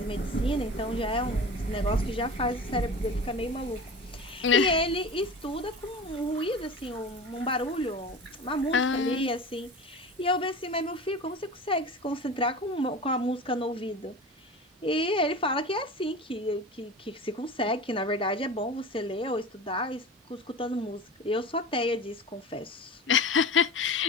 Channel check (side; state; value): both; normal; correlation 0.33